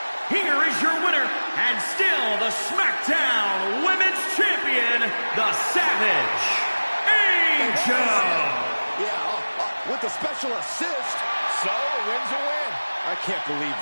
Here is your winner, and still the SmackDown Women's Champion, the Savage, Angel. Yeah, with the special assist. So, a win's a win. I can't believe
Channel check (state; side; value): inverted; both; correlation -1.00